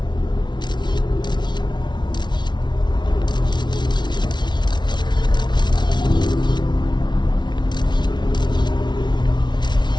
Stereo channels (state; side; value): late; right; 0.21 ms